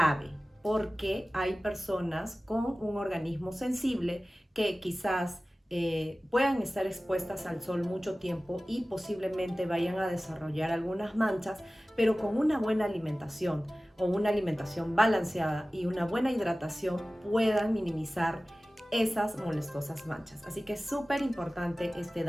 porque hay personas con un organismo sensible que quizás puedan estar expuestas al sol mucho tiempo y posiblemente vayan a desarrollar algunas manchas, pero con una buena alimentación o una alimentación balanceada y una buena hidratación puedan minimizar esas molestosas manchas. Así que es súper importante esta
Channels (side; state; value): both; normal; correlation 0.97